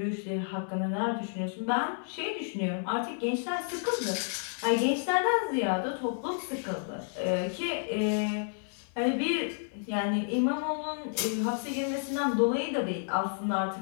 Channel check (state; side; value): silent; right; digital silence